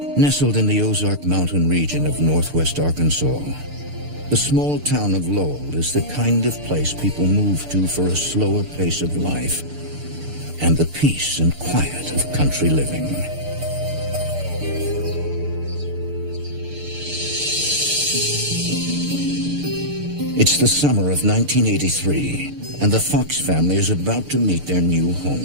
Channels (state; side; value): late; left; 6.7 ms